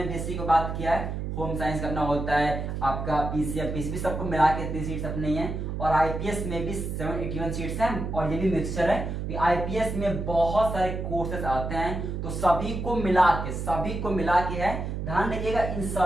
बीएससी को बात किया है, होम साइंस करना होता है आपका, पीसीएम पीसीबी सबको मिला के इतनी सीट्स अपनी हैं, और आईपीएस में भी 781 सीट्स हैं, और ये भी मिक्सचर है, आईपीएस में बहुत सारे कोर्सेस आते हैं, तो सभी को मिला के है। ध्यान रखिएगा इन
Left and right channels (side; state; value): right; noise; hum, 4 dB below the sound